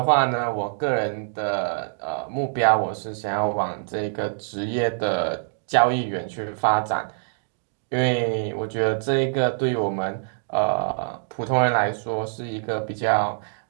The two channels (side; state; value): left; silent; digital silence